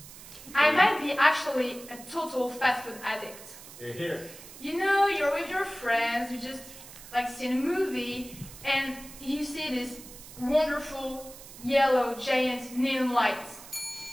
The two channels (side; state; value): right; noise; hiss, 16 dB below the sound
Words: I might be actually a total fast food addict. You know, you're with your friends, you just like see a movie, and you see this wonderful yellow giant neon lights